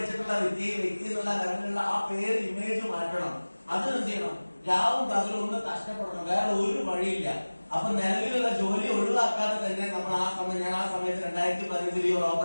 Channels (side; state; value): both; inverted; correlation -1.00